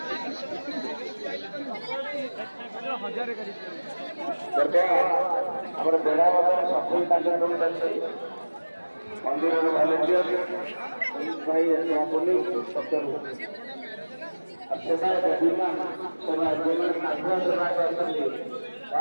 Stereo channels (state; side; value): inverted; both; correlation -1.00